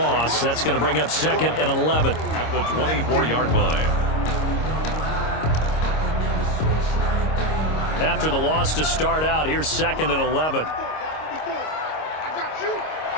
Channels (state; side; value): late; right; 26 ms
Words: That's going to bring up second and 11. At the 24-yard line. After the loss to start out, here's second and 11.